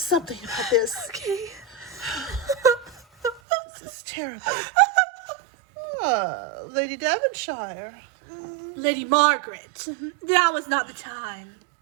about this. Okay. This is terrible. Oh, Lady Devonshire. Lady Margaret, now is not the time.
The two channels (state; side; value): drops out; left; at 3.4 s